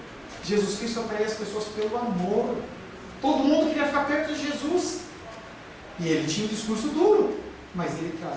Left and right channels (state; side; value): identical; both; correlation 1.00